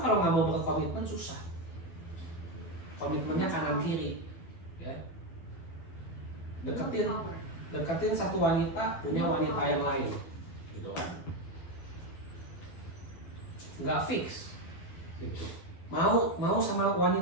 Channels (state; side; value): late; right; 12 ms